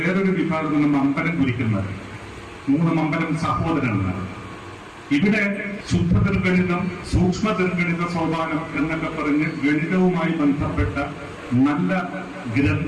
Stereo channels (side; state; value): both; identical; correlation 1.00